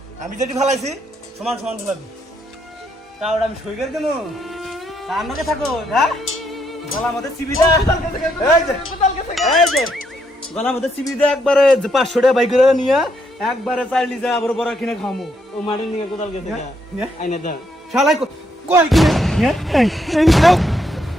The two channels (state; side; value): normal; both; correlation 0.75